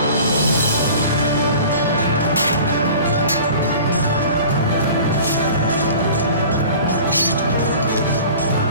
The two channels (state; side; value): inverted; both; correlation -0.42